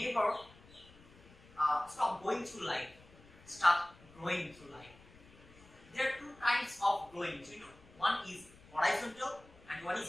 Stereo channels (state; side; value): noise; left; rumble, 24 dB below the sound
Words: stop going through life, start growing through life. There are two kinds of growing, you know. One is horizontal and one